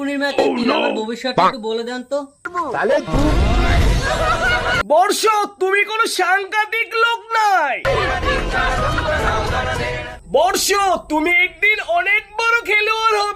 মেয়েতে তিল, আমার ভবিষ্যৎটা একটু বলে দেন তো। বর্ষ, তুমি কোনো সাংঘাতিক লোক নাই। বর্ষ, তুমি একদিন অনেক বড় খেলোয়াড়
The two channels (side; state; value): both; identical; correlation 1.00